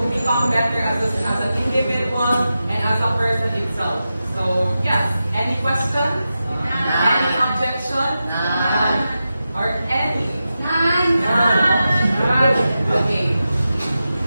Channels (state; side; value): inverted; both; correlation -0.91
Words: become better as an individual and as a person itself. So yes, any questions? Any objection? Or any? None. Okay.